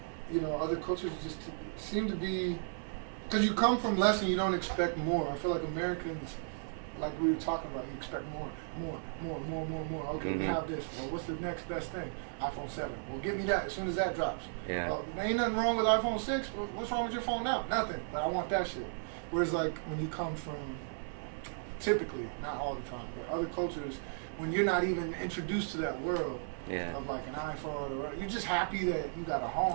you know, other cultures just seem to be, because you come from less and you don't expect more. I feel like Americans, like we were talking about, you expect more. Okay, we have this. Well, what's the next best thing? iPhone 7. Well, get me that as soon as that drops. Yeah. Well, there ain't nothing wrong with iPhone 6. What's wrong with your phone now? Nothing. But I want that shit. Whereas, like, when you come from, typically, not all the time, but other cultures, when you're not even introduced to that world of, like, an iPhone, or you're just happy that you got a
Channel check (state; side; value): silent; left; 54 dB below the other